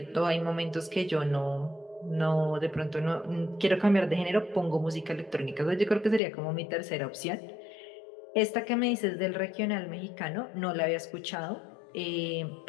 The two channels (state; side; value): drops out; right; at 6.2 s